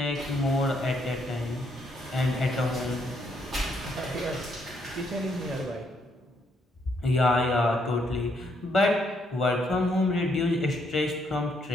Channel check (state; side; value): normal; both; correlation 0.73